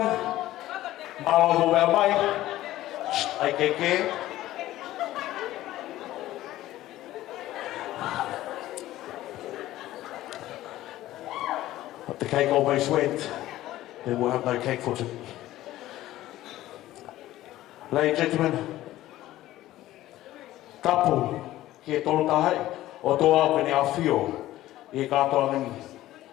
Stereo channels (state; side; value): quieter; right; 15.1 dB